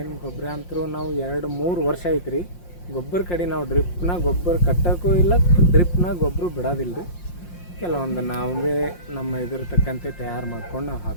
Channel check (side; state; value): right; late; 5.7 ms